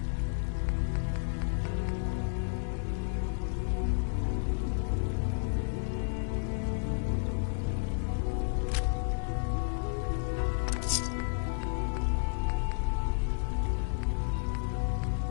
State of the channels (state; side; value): silent; right; 57 dB below the other